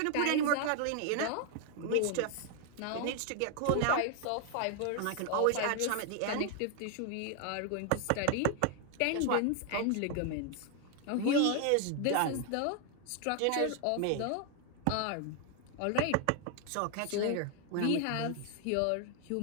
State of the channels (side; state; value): both; different; correlation 0.00